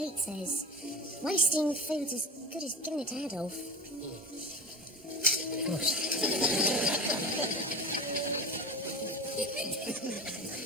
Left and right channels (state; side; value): normal; both; correlation 0.32